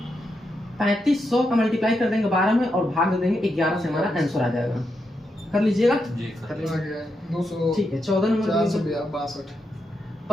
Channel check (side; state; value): both; normal; correlation 0.84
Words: 3500 का मल्टीप्लाई कर देंगे 12 में और भाग दे देंगे 11 से, हमारा आंसर आ जाएगा। कर लीजिएगा। जी कर आ लीजिए। गया 200। ठीक है 14 नंबर 462